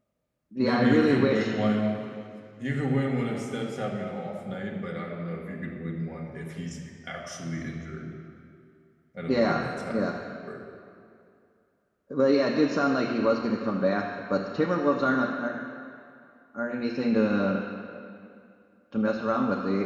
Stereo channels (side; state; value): both; identical; correlation 1.00